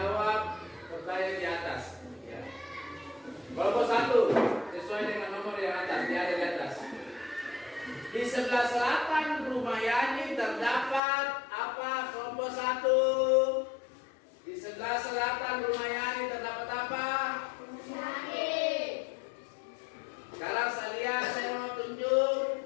pertanyaan di atas. Ya. Kelompok 1 sesuai dengan nomor yang atas, dia ada di atas. Di sebelah selatan rumah Yani terdapat apa? Kelompok 1. Di sebelah selatan rumah Yani terdapat apa? Sekarang saya mau tunjuk.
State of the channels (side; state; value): right; drops out; at 11.0 s